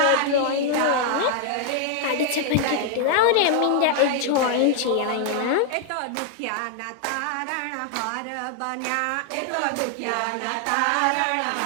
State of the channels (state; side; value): different; both; correlation 0.00